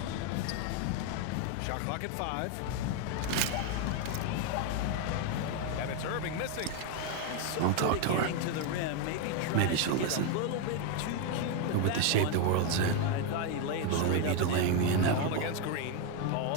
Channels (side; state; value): both; different; correlation 0.01